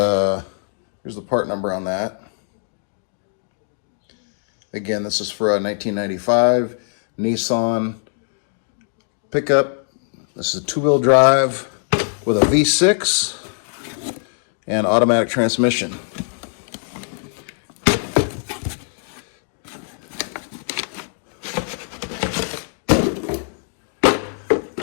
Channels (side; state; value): right; silent; digital silence